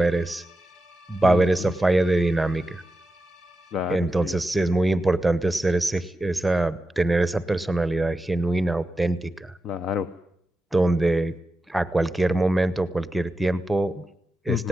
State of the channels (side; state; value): both; normal; correlation 0.90